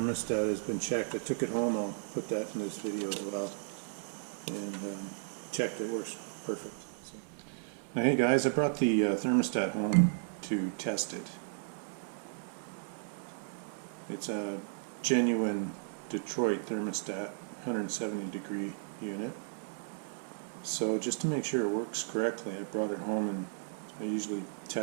has been checked. I took it home, I'll put that in this video as well. And checked, it works perfect. So. Now hey guys, I brought the thermostat home to test it. It's a genuine Detroit thermostat, 170 degree unit. So just to make sure it works correctly, I brought it home and I usually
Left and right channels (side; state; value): left; silent; 55 dB below the other